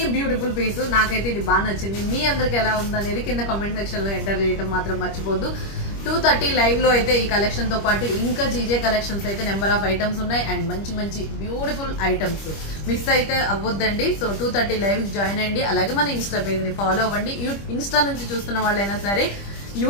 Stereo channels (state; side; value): late; right; 25 ms